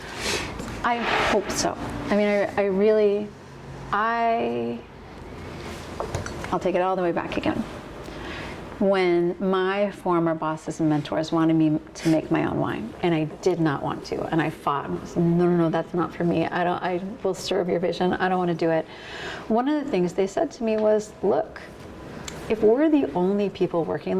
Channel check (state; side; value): identical; both; correlation 1.00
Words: I hope so. I mean, I'll take it all the way back again. when my former bosses and mentors wanted me to make my own wine, and I did not want to, and I fought and was, no, that's not for me. I will serve your vision. I don't want to do it. One of the things they said to me was, look, if we're the only people working